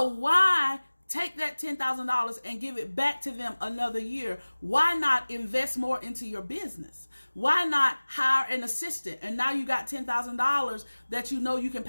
why take that $10,000 and give it back to them another year? Why not invest more into your business? Why not hire an assistant? And now you got $10,000 that you know you can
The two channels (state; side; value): inverted; both; correlation -1.00